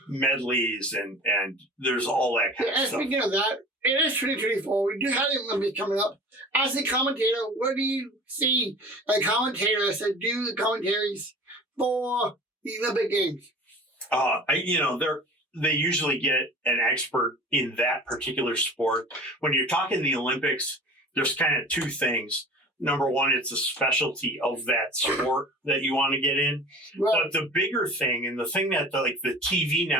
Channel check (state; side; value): normal; both; correlation 0.40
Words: medleys, and there's all that kind of stuff. Speaking of that, it is 2024. We do have the Olympics coming up. As a commentator, what do you see a commentator to do the commentaries for the Olympic Games? They usually get an expert in that particular sport. When you're talking the Olympics, there's kind of two things. Number one, it's a specialty of that sport that you want to get in. Right. But the bigger thing, and the thing that the TV